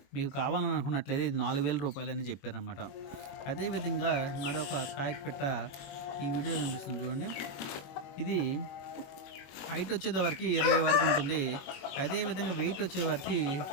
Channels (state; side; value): late; right; 21 ms